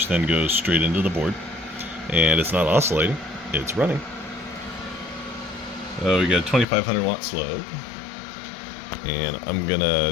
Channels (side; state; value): right; drops out; at 6.7 s